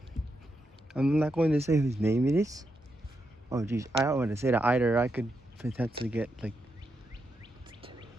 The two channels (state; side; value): normal; both; correlation 0.84